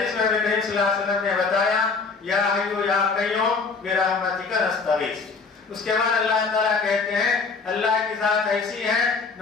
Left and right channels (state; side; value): quieter; right; 4.6 dB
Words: میں نبی کریم صلی اللہ علیہ وسلم نے بتایا یا حی یا قیوم برحمتک نستغیث۔ اس کے بعد اللہ تعالیٰ کہتے ہیں اللہ کی ذات ایسی ہے